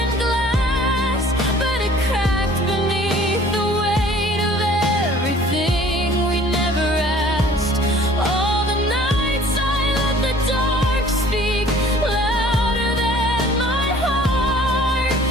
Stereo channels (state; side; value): normal; both; correlation 0.52